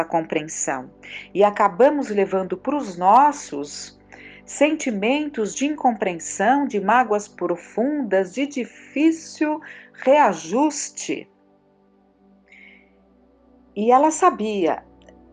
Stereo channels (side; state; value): both; identical; correlation 1.00